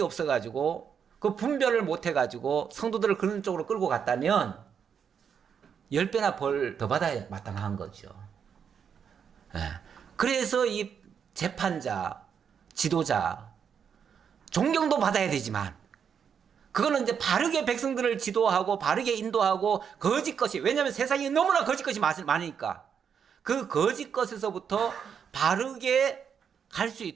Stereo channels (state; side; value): quieter; left; 7.3 dB